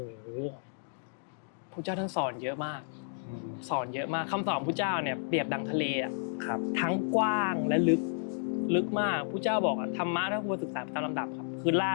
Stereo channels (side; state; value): right; silent; digital silence